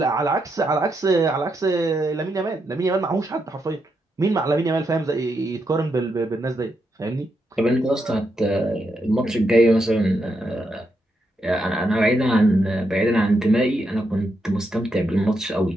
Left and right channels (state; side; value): normal; both; correlation 0.82